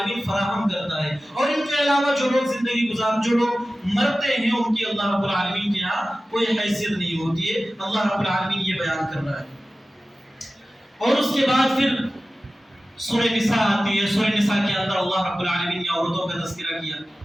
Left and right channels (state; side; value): normal; both; correlation 0.95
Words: فراہم کرتا ہے، اور ان کے علاوہ جو لوگ زندگی جو لوگ مرتے ہیں ان کی اللہ رب العالمین کے یہاں کوئی حیثیت نہیں ہوتی ہے۔ اللہ رب العالمین یہ بیان کر رہا ہے۔ اور اس کے بعد پھر سورہ نساء آتی ہے۔ سورہ نساء کے اندر اللہ رب العالمین نے عورتوں کا تذکرہ کیا۔